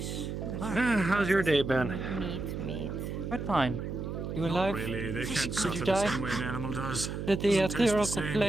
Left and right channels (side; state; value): right; noise; hum, 5 dB below the sound